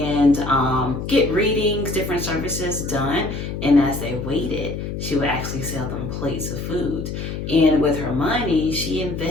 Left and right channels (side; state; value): left; noise; hum, 6 dB below the sound